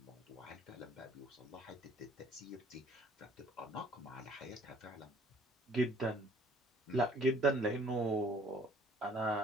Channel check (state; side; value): normal; both; correlation 0.57